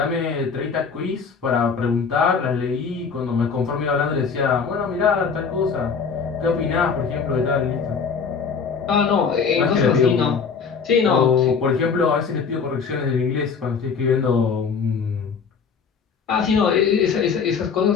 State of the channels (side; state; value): right; quieter; 5.8 dB